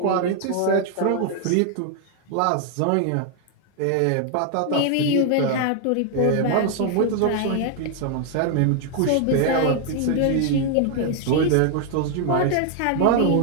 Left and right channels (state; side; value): different; both; correlation 0.00